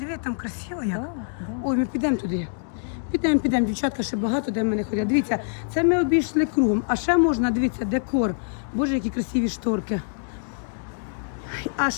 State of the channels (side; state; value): right; silent; digital silence